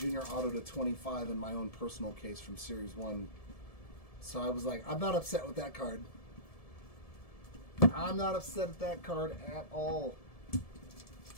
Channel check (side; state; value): right; late; 1.7 ms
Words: auto to 25 in my own personal case from Series 1. So I was like, I'm not upset with that card. I'm not upset at that card at all.